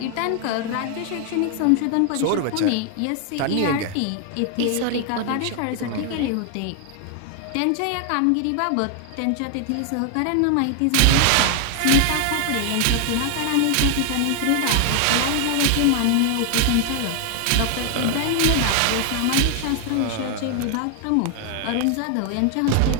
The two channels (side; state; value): both; different; correlation 0.00